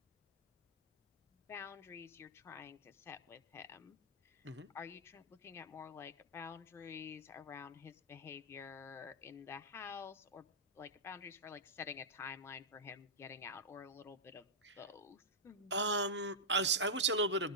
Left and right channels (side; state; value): both; normal; correlation -0.12